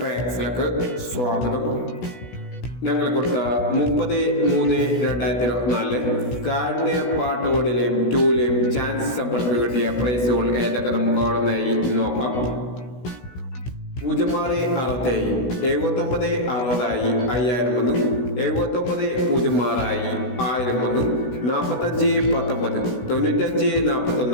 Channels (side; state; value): right; late; 16 ms